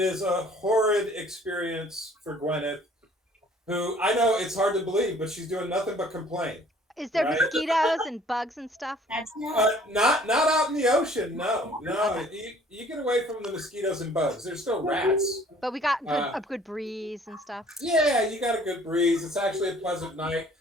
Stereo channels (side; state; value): both; normal; correlation 0.55